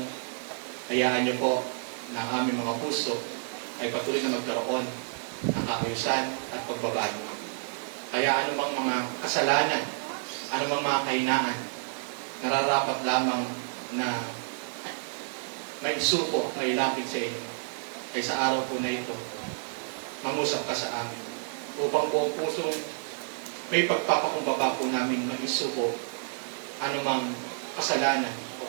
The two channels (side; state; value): left; silent; 56 dB below the other